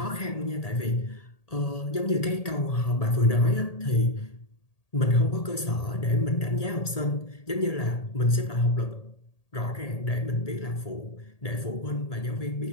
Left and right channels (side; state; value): right; late; 1.8 ms